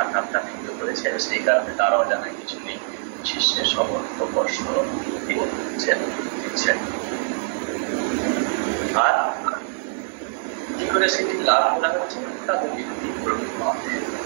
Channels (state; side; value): silent; left; digital silence